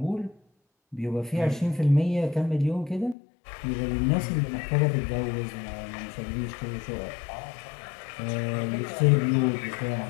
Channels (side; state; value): right; drops out; at 3.2 s